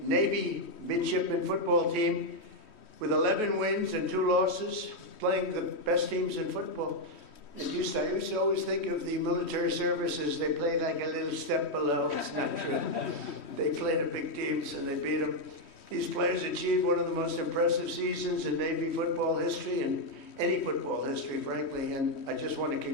Navy midshipman football team with 11 wins and 2 losses, playing the best teams in football. I used to always think of the military services. They played like a little step below. They played the big teams and they beat them. These players achieved one of the most impressive seasons in Navy football history and any football history, frankly. And I just want to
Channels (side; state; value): right; late; 3.1 ms